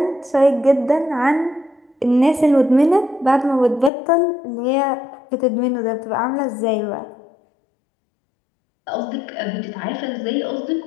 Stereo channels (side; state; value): right; drops out; at 3.9 s